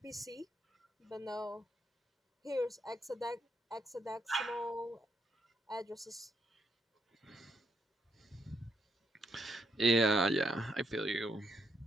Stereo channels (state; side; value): normal; both; correlation 0.76